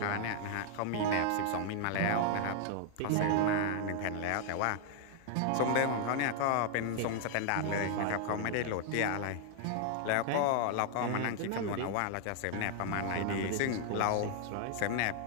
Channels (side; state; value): both; different; correlation 0.00